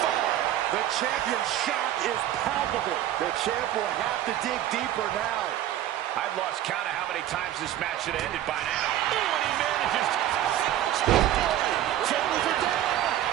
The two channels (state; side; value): quieter; left; 12.4 dB